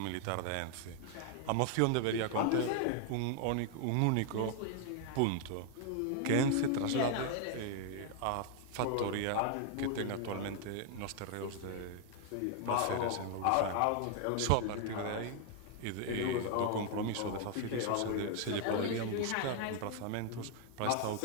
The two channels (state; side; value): different; both; correlation 0.00